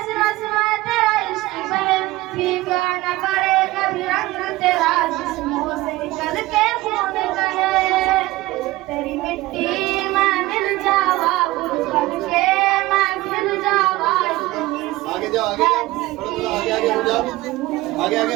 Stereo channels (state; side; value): quieter; left; 18.7 dB